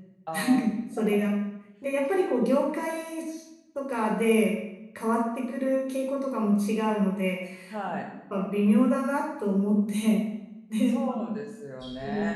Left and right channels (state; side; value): identical; both; correlation 1.00